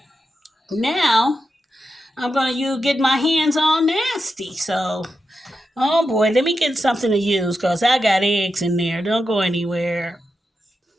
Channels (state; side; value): normal; both; correlation 0.88